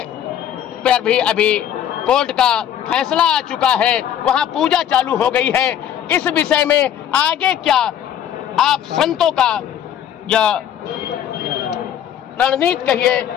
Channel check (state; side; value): quieter; right; 10.0 dB